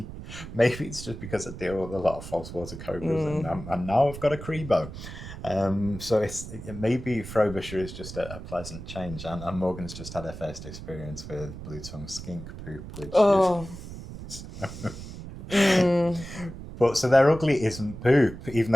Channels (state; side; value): noise; right; rumble, 12 dB below the sound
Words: maybe it's just because I deal with a lot of false water cobras, and now I've got a Crebo. So maybe Frobisher is just a pleasant change, and Morgan's just had her first experience with blue tongue skink poop, which But so their ugly isn't poop, even